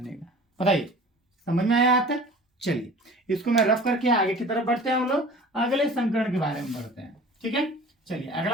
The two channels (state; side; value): normal; both; correlation 0.43